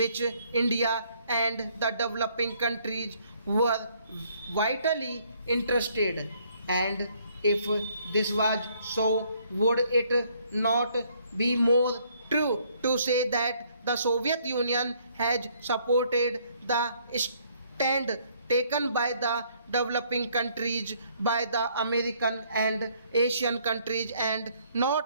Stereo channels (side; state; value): both; inverted; correlation -0.66